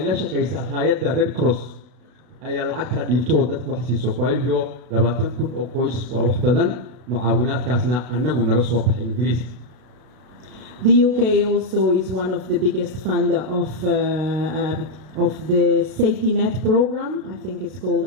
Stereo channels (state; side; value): late; left; 32 ms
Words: كيسا هيدا ريد كروس أي العكس ديبتو ده وحسي سوكوايليو لما تكون أقوس ووحدنا معاونات كاسنا أننا نرسوا بإنجليزي. The UK also is one of the biggest funder of the safety net program. I think it's called